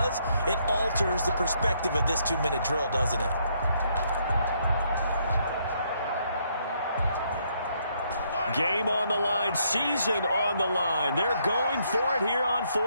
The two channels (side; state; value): both; inverted; correlation -0.72